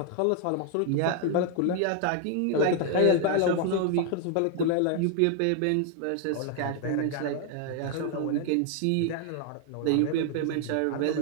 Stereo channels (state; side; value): different; both; correlation 0.00